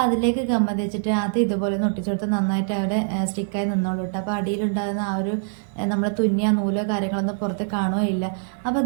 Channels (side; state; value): left; silent; digital silence